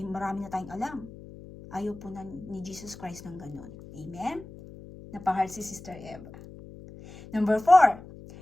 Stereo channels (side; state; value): left; noise; hum, 17 dB below the sound